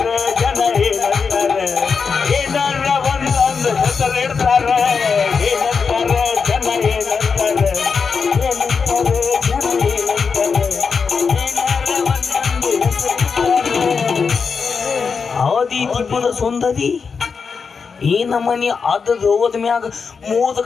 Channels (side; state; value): right; quieter; 5.5 dB